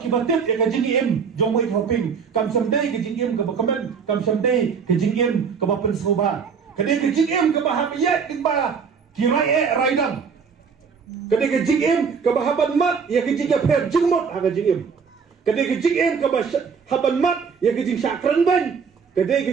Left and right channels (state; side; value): quieter; left; 6.0 dB